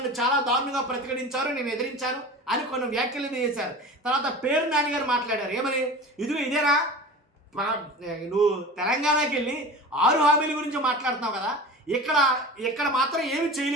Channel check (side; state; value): both; normal; correlation 0.35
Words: చాలా దారుణంగా ప్రతిఘటించారు, నేను ఎదిరించాను అని కొన్ని వ్యాఖ్యలు చేశారు. తర్వాత పేర్ని నాని గారు మాట్లాడారు, ఏమని, ఇదేనా నువ్వు తెలంగాణకి వెళ్ళి 6 హామీల గురించి మాట్లాడుతున్నావు కదా, ఇక్కడ మాత్రం ఏమి